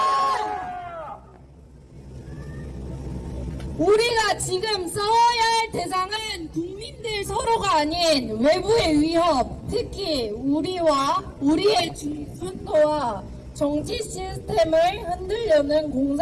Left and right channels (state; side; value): identical; both; correlation 1.00